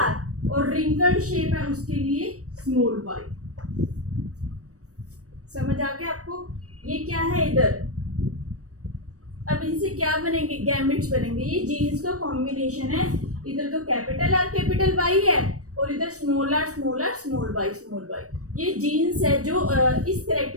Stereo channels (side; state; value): left; late; 0.66 ms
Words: और रिंकल्ड शेप है उसके लिए स्मॉल वाई। समझ आ गया आपको। ये क्या है इधर, अब इनसे क्या बनेंगे गैमेट्स बनेंगे। ये जीन्स का कॉम्बिनेशन है, इधर तो कैपिटल आर कैपिटल वाई है और इधर small are small are small Y small Y. ये जीन्स है जो इस